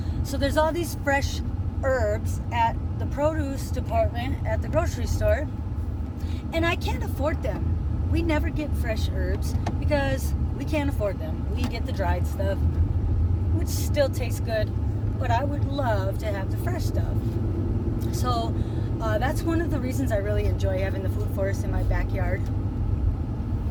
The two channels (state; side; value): identical; both; correlation 1.00